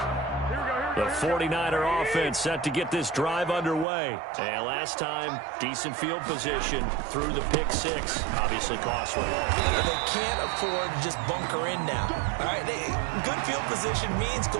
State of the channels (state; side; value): drops out; left; at 3.9 s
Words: The 49er offense set to get this drive underway. And last time, decent field position through the pick six. Obviously costly. But they can't afford to just bunker in now. All right, good field position means